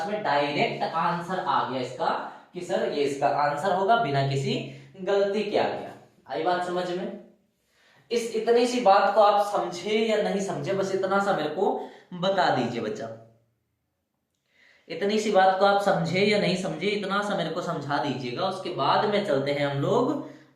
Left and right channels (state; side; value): identical; both; correlation 1.00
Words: में डायरेक्ट आंसर आ गया इसका कि सर ये इसका आंसर होगा बिना किसी गलती के आ गया। आई बात समझ में? इस इतनी सी बात को आप समझे या नहीं समझे, बस इतना सा मेरे को बता दीजिए बच्चा। इतनी सी बात को आप समझे या नहीं समझे, इतना सा मेरे को समझा दीजिएगा। उसके बाद में चलते हैं हम लोग